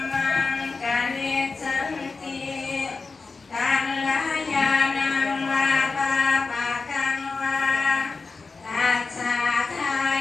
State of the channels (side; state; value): right; quieter; 4.2 dB